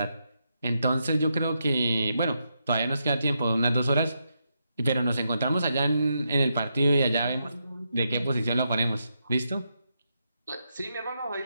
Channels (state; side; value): inverted; both; correlation -0.82